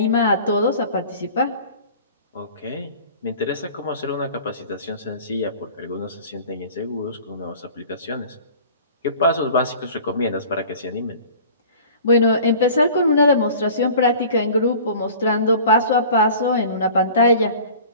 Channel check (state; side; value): inverted; both; correlation -0.44